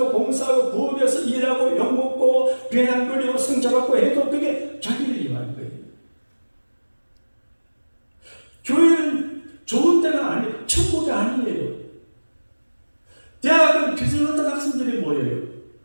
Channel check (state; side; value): inverted; both; correlation -1.00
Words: 봉사하고 부업해서 일하고 욕먹고 배낭거리고 성자받고 해도 그게 자기를 위한 거예요. 교회는 좋은 데가 아니에요. 천국이 아니에요. 대학은 비슷한 학생들이 모여요.